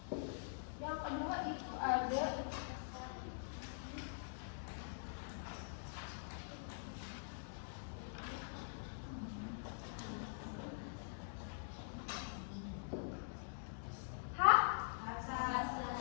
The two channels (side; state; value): right; silent; digital silence